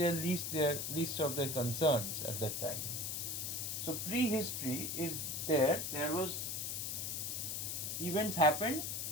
least of their concerns at that time. So prehistory is there. There was events happened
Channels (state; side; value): noise; left; hiss, 2 dB below the sound